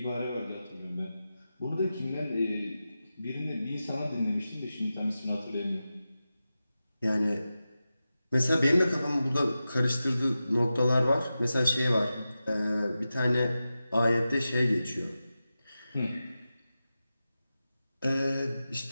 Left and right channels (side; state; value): both; inverted; correlation -0.93